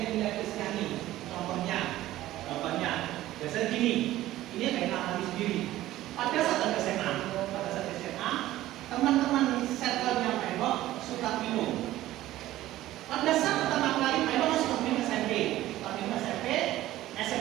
Kristiani. Contohnya, biasanya gini. Ini kayak alami sendiri. Pada saat SMA, teman-teman circle-nya Pak Eno suka minum. Pada saat pertama kali Pak Eno suka minum SMP,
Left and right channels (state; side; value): quieter; left; 15.1 dB